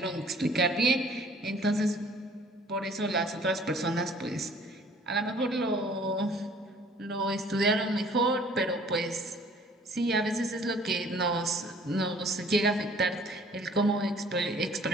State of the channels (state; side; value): normal; both; correlation 0.54